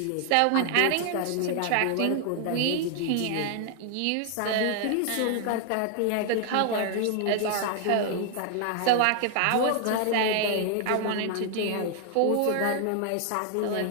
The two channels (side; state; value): both; different; correlation 0.00